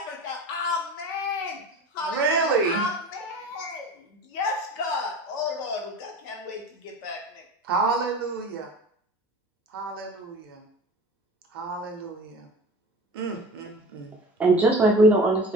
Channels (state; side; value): normal; both; correlation 0.36